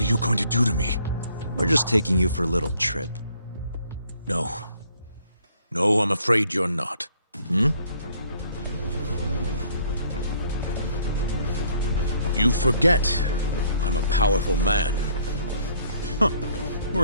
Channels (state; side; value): inverted; both; correlation -0.62